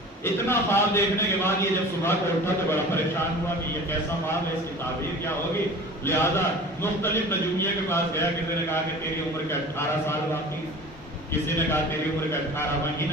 اتنا خواب دیکھنے کے بعد یہ جب صبح کو اٹھا تو بڑا پریشان ہوا کہ یہ کیسا خواب ہے، اس کی تعبیر کیا ہوگی. لہذا مختلف نجومیہ کے پاس گیا. کسی نے کہا کہ تیری عمر کے 18 سال باقی ہیں، کسی نے کہا تیری عمر کے 18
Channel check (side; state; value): both; normal; correlation 0.40